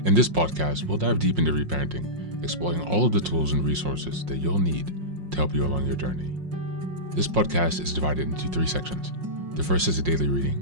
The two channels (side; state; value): left; late; 5.6 ms